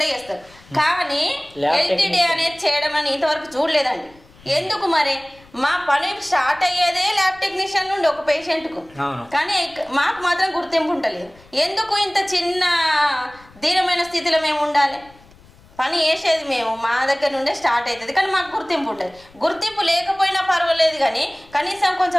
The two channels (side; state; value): left; noise; rumble, 26 dB below the sound